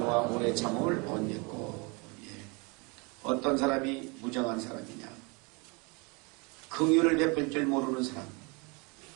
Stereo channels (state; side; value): quieter; left; 29.9 dB